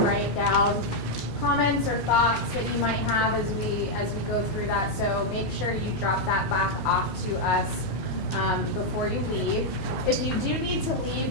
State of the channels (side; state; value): both; normal; correlation -0.01